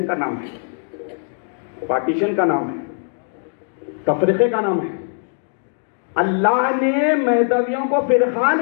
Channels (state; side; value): silent; right; digital silence